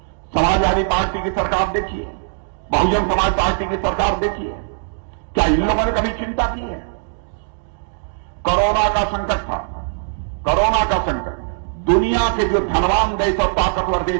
समाजवादी पार्टी की सरकार देखी है, बहुजन समाज पार्टी की सरकार देखी है? क्या इन लोगों ने कभी चिंता की है? कोरोना का संकट था, कोरोना का संकट, दुनिया के जो धनवान देश और ताकतवर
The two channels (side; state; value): left; silent; digital silence